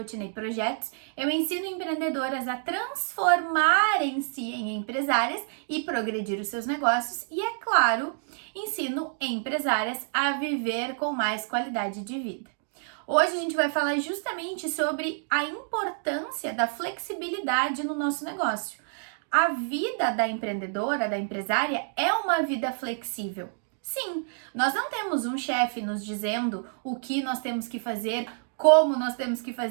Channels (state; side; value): silent; left; digital silence